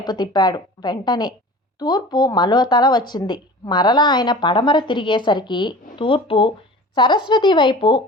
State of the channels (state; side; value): normal; both; correlation 0.39